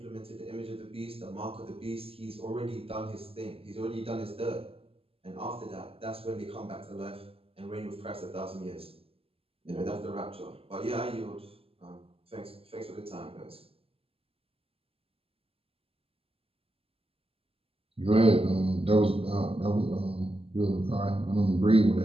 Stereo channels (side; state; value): left; late; 0.28 ms